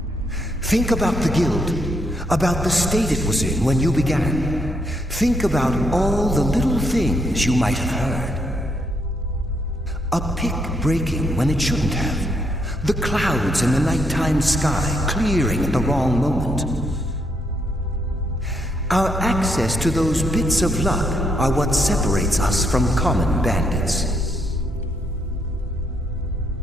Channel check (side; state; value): both; normal; correlation 0.76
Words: Think about the guild, about the state it was in when you began. Think about all the little things you might have heard. A pick breaking when it shouldn't have. The clouds in the nighttime sky clearing at the wrong moment. Our access to those bits of luck are what separates us from common bandits.